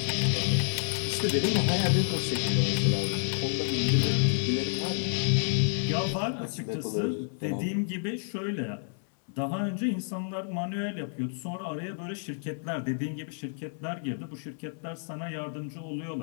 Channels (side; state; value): right; silent; digital silence